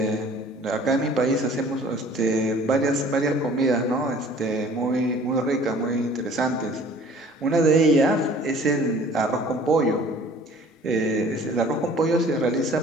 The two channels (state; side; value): normal; both; correlation 0.50